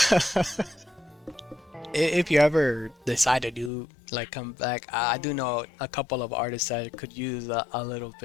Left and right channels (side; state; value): right; drops out; at 3.7 s